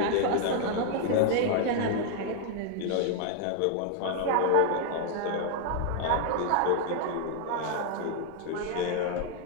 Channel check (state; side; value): different; both; correlation 0.00